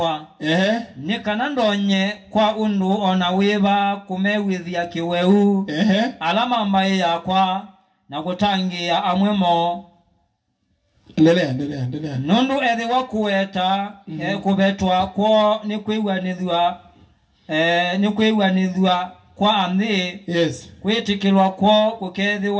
Nikanandonye kwa undu ona weba kumewithia kiweu. Alama mbaye yakwa na kutangia amwemo. Endelea. Nundu ethi wakueta kubetwa kwa nikwiwanithwa kwa amthi. Yes. Kwitikilwa kwa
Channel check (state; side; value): identical; both; correlation 1.00